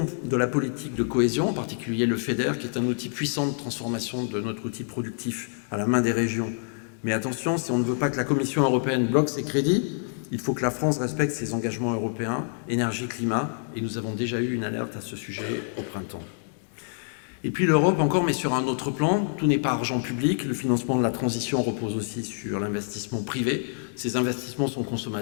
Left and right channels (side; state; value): right; silent; digital silence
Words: de la politique de cohésion, en particulier le FEDER, qui est un outil puissant de transformation de notre outil productif à la main des régions. Mais attention, si on ne veut pas que la Commission européenne bloque ses crédits, il faut que la France respecte ses engagements européens, énergie-climat, et nous avons déjà eu une alerte à ce sujet au printemps. Et puis l'Europe encore, mais sur un autre plan, tout n'est pas argent public, le financement de la transition repose aussi sur l'investissement privé. Ces investissements sont